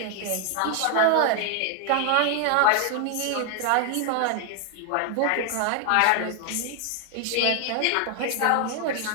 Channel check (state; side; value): different; both; correlation 0.00